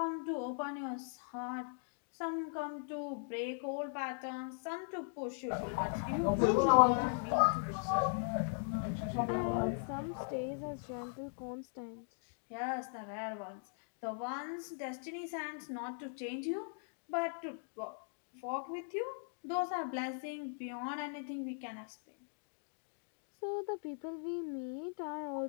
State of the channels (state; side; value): silent; right; digital silence